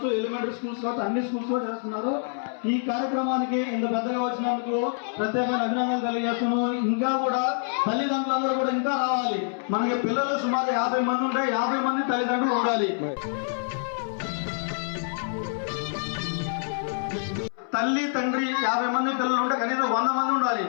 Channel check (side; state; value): right; silent; 61 dB below the other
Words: ఎలిమెంటరీ స్కూల్స్ కావచ్చు, అన్ని స్కూల్స్ లో చేస్తున్నారు. ఈ కార్యక్రమానికి ఇంత పెద్దగా వచ్చినందుకు ప్రత్యేకమైన అభినందనలు తెలియజేస్తున్నాను. ఇంకా కూడా తల్లిదండ్రులందరూ కూడా ఇంకా రావాలి. మనకి పిల్లలు సుమారు 50 మంది ఉంటే 50 మంది తల్లిదండ్రులు ఉండాలి. తల్లి తండ్రి 50 మంది పిల్లలు ఉంటే కనీసం 100 మంది ఉండాలి